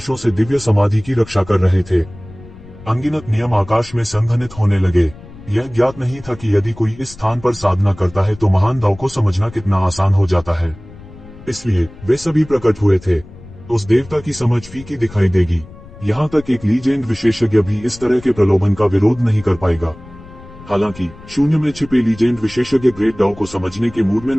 से दिव्य समाधि की रक्षा कर रहे थे। अनगिनत नियम आकाश में संघनित होने लगे। यह ज्ञात नहीं था कि यदि कोई इस स्थान पर साधना करता है तो महान दाव को समझना कितना आसान हो जाता है। इसलिए वे सभी प्रकट हुए थे। उस देवता की समझ फीकी दिखाई देगी। यहाँ तक एक लीजेंड विशेषज्ञ भी इस तरह के प्रलोभन का विरोध नहीं कर पाएगा। हालांकि शून्य में छिपे लीजेंड विशेषज्ञ ग्रेट दाव को समझने के मूड में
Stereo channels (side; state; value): left; noise; rumble, 19 dB below the sound